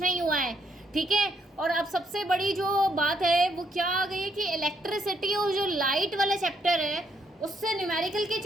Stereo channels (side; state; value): both; normal; correlation 0.73